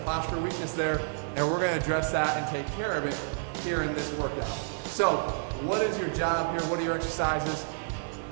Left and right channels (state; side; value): silent; left; 58 dB below the other